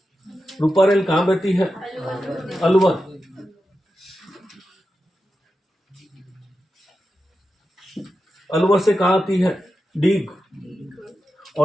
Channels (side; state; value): both; normal; correlation 0.90